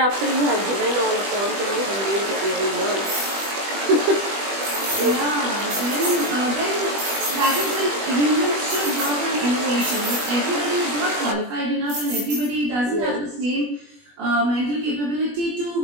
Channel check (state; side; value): late; left; 20 ms